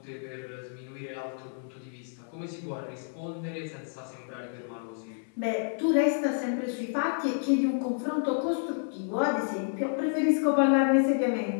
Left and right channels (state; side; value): silent; right; digital silence